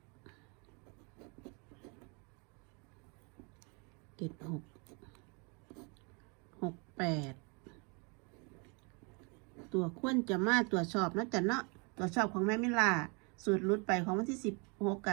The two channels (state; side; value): quieter; left; 32.7 dB